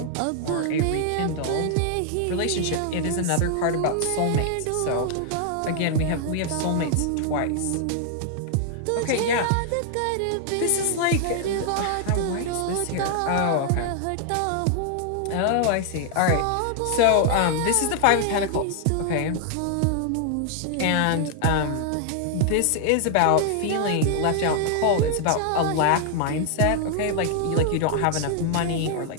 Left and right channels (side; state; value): both; different; correlation 0.00